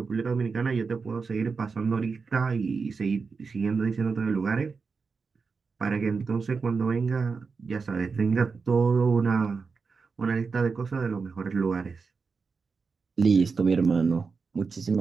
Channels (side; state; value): left; quieter; 4.9 dB